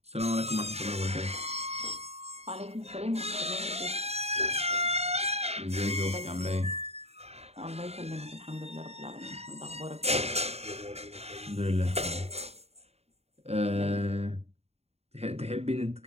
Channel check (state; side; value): late; left; 0.30 ms